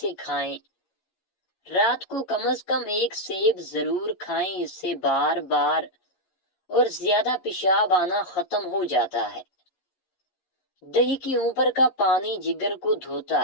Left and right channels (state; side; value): late; right; 11 ms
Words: کھائیں۔ رات کو کم از کم 1 سیب ضرور کھائیں، اس سے بار بار اور زیادہ پیشاب آنا ختم ہو جاتا ہے۔ دہی کی اوپر کا پانی جگر کو دھوتا